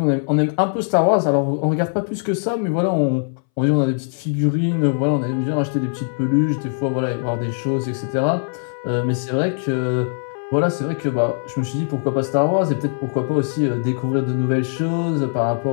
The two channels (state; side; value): silent; right; 64 dB below the other